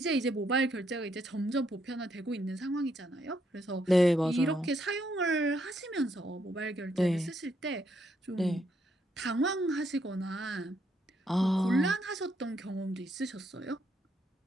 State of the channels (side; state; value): both; normal; correlation 0.75